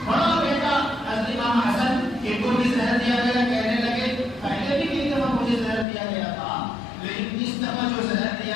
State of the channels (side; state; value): right; drops out; at 5.9 s